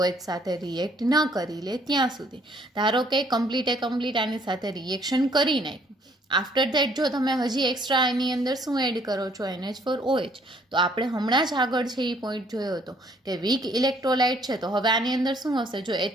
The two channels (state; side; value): normal; both; correlation 0.63